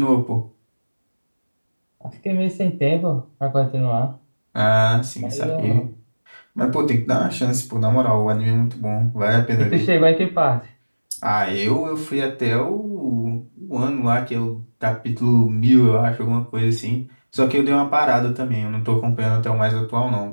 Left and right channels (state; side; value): inverted; both; correlation -1.00